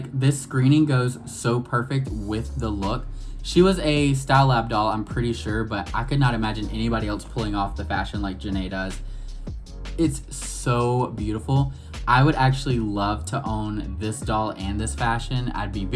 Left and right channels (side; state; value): both; identical; correlation 1.00